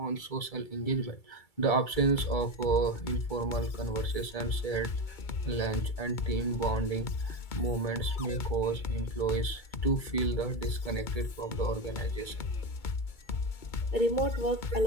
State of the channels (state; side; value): late; right; 2.3 ms